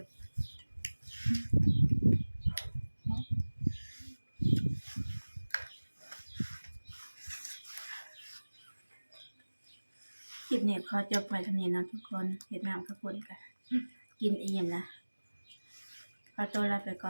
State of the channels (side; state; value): both; inverted; correlation -1.00